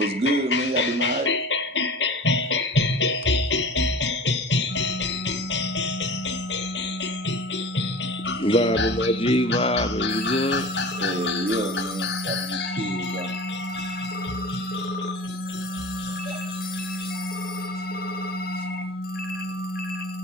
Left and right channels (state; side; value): normal; both; correlation 0.37